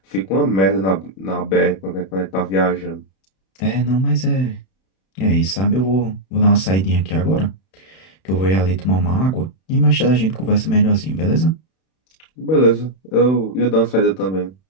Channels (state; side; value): late; right; 31 ms